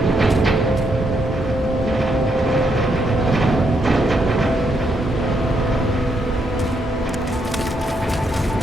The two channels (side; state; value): both; normal; correlation 0.78